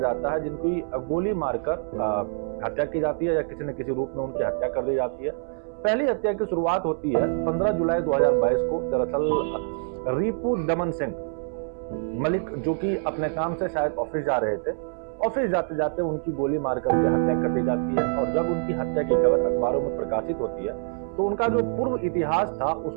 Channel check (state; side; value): silent; left; 60 dB below the other